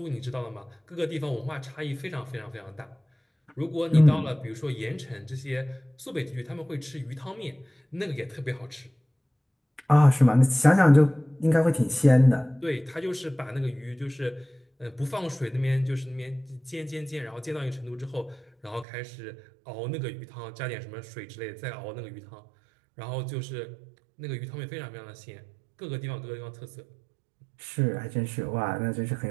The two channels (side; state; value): left; drops out; at 18.9 s